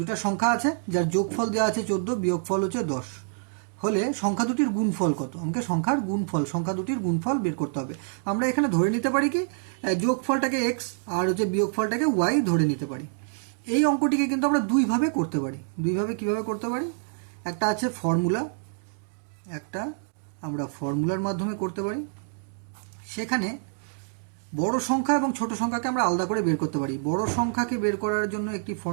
সংখ্যা আছে যার যোগফল দেওয়া আছে 14, বিয়োগফল হচ্ছে 10 হলে সংখ্যা দুটির গুণফল কত? আমাকে সংখ্যা দুটির গুণফল বের করতে হবে। আমরা এখানে ধরে নিতে পারি কি যোগফলটাকে এক্স আর হচ্ছে বিয়োগফলটাকে ওয়াই ধরে নিতে পারি। এই অঙ্কটিকে কিন্তু আমরা দুইভাবে করতে পারি। কিভাবে করতে পারি? একটা আছে ফর্মুলা, একটা আমরা ফর্মুলার মাধ্যমে করতে পারি। সেখানে বড় সংখ্যা এবং ছোট সংখ্যাকে আমরা আলাদা করে বের করতে পারি। বড় সংখ্যাকে বের করার জন্য একটি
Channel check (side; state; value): left; silent; digital silence